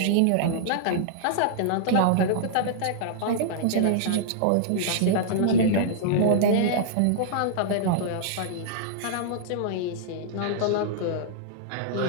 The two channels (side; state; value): both; different; correlation -0.02